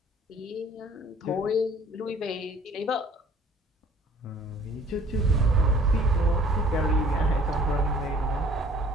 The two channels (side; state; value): both; normal; correlation 0.53